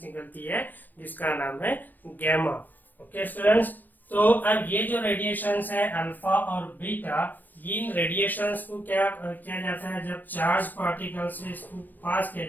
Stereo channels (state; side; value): late; right; 0.089 ms